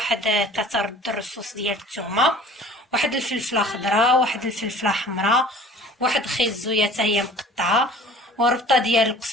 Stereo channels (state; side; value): normal; both; correlation 0.46